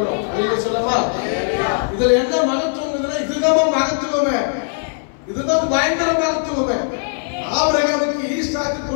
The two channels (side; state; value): right; silent; 62 dB below the other